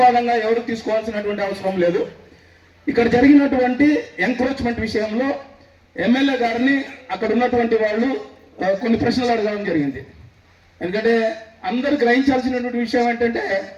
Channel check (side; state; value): both; identical; correlation 1.00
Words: ఎవరు తీసుకోవాల్సినటువంటి అవసరం లేదు. ఇక్కడ జరిగినటువంటి ఎంక్రోచ్మెంట్ విషయంలో ఎమ్మెల్యే గారిని అక్కడ ఉన్నటువంటి వాళ్ళు కొన్ని ప్రశ్నలు అడగడం జరిగింది. ఎందుకంటే అందరూ గ్రహించాల్సినటువంటి విషయం ఏంటంటే